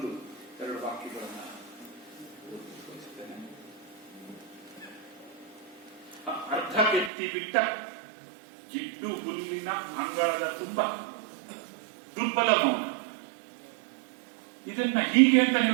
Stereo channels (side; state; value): left; drops out; at 7.1 s